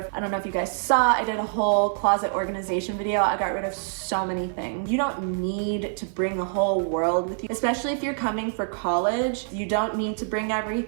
I don't know if you guys saw, I did a whole closet organization video. I got rid of so many things. You don't need to bring the whole world with you, especially if you're coming for college. You don't need to bring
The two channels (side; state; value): left; silent; 61 dB below the other